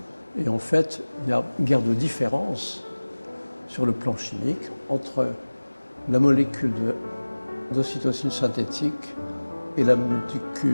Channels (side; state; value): both; inverted; correlation -1.00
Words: et en fait, il y a une guerre de différence sur le plan chimique entre la molécule d'ocytocine synthétique et la